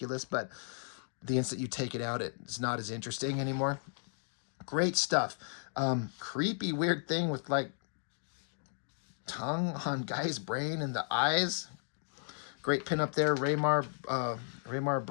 But the instant you take it out, it's not as interesting anymore. Great stuff. Creepy, weird thing with like tongue on guy's brain and the eyes. Great pin up there, Raymar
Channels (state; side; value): silent; right; digital silence